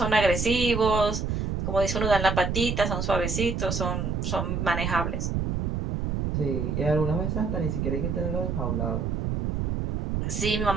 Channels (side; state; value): right; noise; rumble, 1 dB below the sound